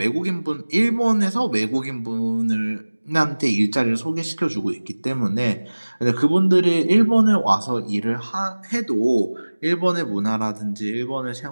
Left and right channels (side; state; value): both; inverted; correlation -1.00